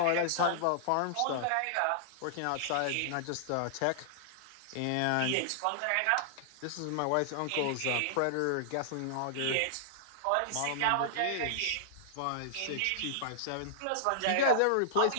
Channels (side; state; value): both; different; correlation -0.01